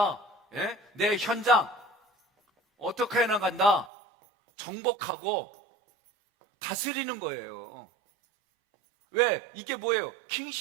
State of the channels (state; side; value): drops out; left; at 3.9 s